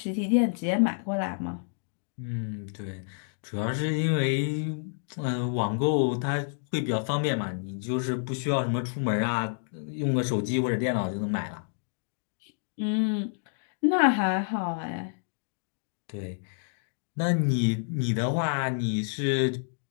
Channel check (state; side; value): silent; right; digital silence